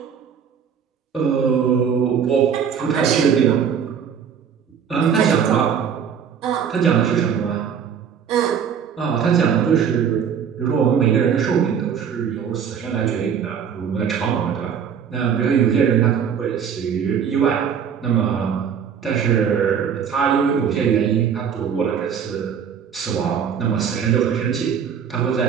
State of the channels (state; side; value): quieter; left; 7.5 dB